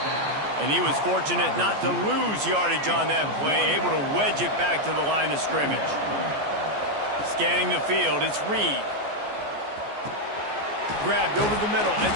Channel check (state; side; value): late; left; 14 ms